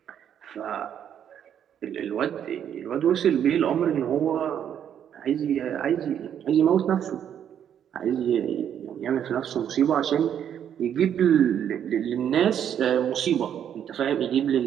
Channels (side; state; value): left; quieter; 9.3 dB